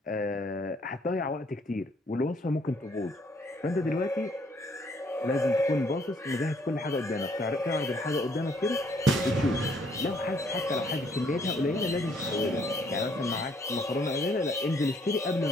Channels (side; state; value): both; normal; correlation 0.66